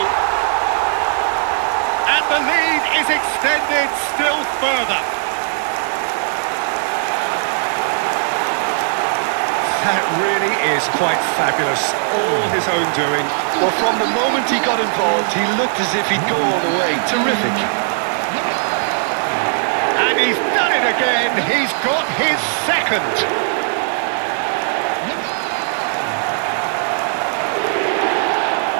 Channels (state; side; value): silent; left; digital silence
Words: And the lead is extended still further. That really is quite fabulous. All his own doing. Well, from the moment he got involved, he looked as if he'd go all the way. Terrific. And he's done it again. He's got his second.